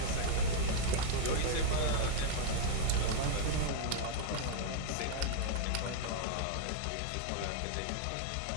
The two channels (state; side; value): different; both; correlation -0.01